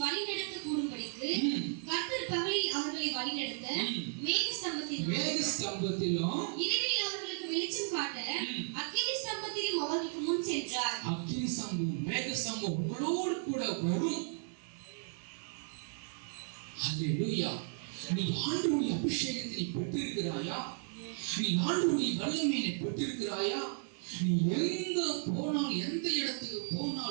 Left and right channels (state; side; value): silent; left; 55 dB below the other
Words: வழி நடக்க கூடும்படிக்கு கர்த்தர் பகலில் அவர்களை வழி நடத்த மேக ஸ்தம்பத்திலும் இரவில் அவர்களுக்கு வெளிச்சம் காட்ட அக்கினி ஸ்தம்பத்திலும் அவர்களுக்கு முன் சென்றார். அக்கினி ஸ்தம்பம், மேக ஸ்தம்பம் உங்களோடு கூட வரும். ஹல்லேலூயா. நீ ஆண்டவருடைய அபிஷேகத்தை நீ பெற்றிருக்கிறாயா? நீ ஆண்டவருடைய வல்லமையை பெற்றிருக்கிறாயா? நீ எங்க போனாலும், எந்த இடத்துக்கு